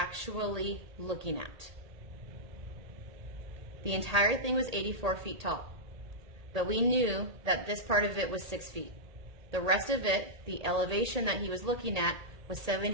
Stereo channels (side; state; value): left; late; 1.8 ms